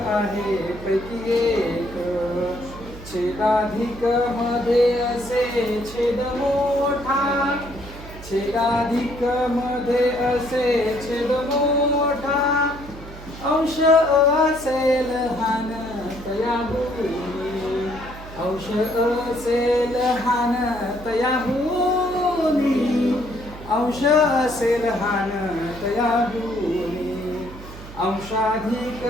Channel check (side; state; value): right; noise; hum, 15 dB below the sound